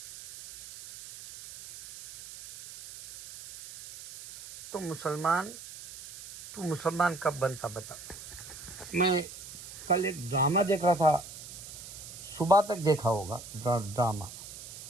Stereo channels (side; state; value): right; noise; hiss, 14 dB below the sound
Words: तो तू मुसलमान कब बनता बता। मैं कल एक ड्रामा देख रहा था, सुबह तक देखा होगा ड्रामा,